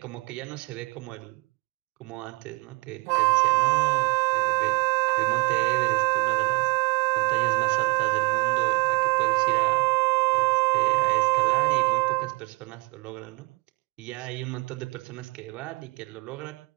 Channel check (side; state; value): left; quieter; 27.6 dB